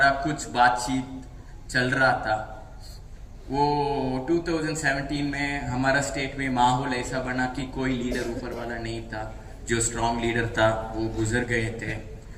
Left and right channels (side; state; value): both; identical; correlation 1.00